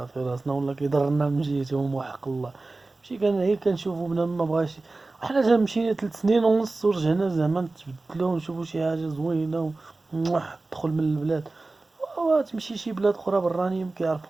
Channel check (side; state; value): left; quieter; 3.3 dB